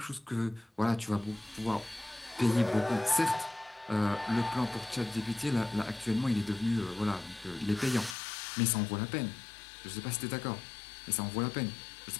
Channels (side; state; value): right; drops out; at 8.2 s